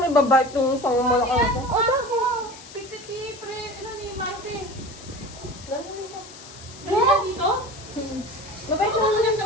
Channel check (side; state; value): left; noise; hiss, 17 dB below the sound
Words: may babike nung isang malaki na po? Oh, bakit? Pipiti, pre. Ano ni Martin? Gano'n dito. Gano'n dito? Babike mo lang